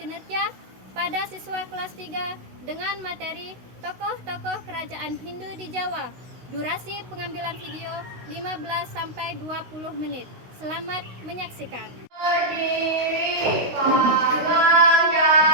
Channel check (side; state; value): left; late; 16 ms